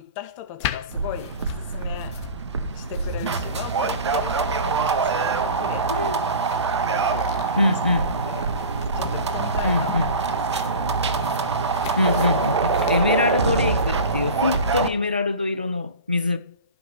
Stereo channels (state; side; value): inverted; both; correlation -0.35